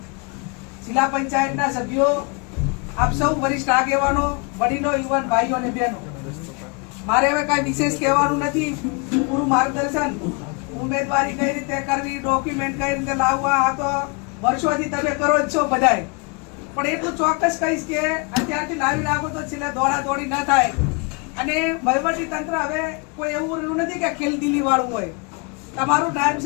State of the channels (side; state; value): right; quieter; 31.8 dB